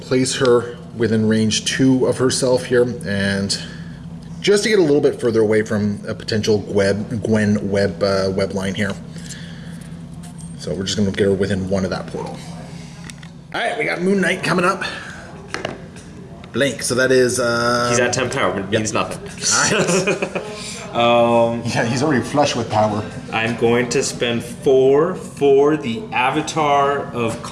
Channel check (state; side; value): identical; both; correlation 1.00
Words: place her within range 2 of herself here, and just to get a little bit further away from a potential Gwen web line here. So we're just going to get her within 1 of that portal. All right, we got Moon Knight coming up. Blank, so that is... He's at 10 power, but it means nothing. All right. Yeah, he's already flush with power. I'm going to spend 4 for the Avatar of